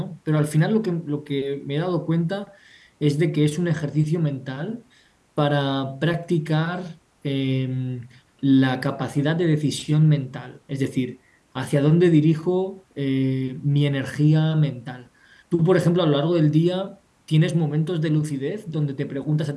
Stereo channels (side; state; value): both; identical; correlation 1.00